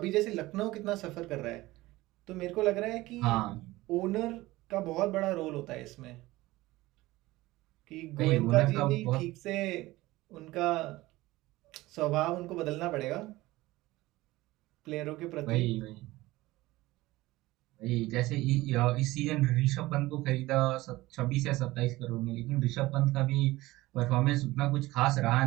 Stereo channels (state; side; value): quieter; left; 18.7 dB